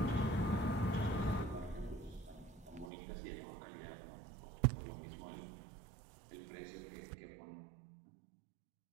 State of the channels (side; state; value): left; drops out; at 2.9 s